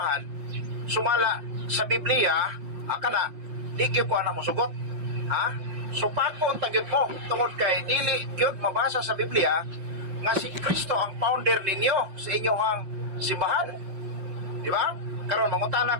sumala sa Biblia, kana, di gyud ko anak mo sugot. Ha? Supakon tagyod mo, tungod kay dili gyud mabasa sa Biblia nga si Kristo ang founder ninyo sa inyong simbahan. Di ba? Karon mangutana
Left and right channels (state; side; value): late; left; 5.7 ms